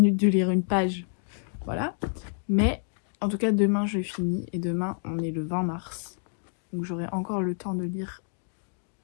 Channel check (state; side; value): silent; right; digital silence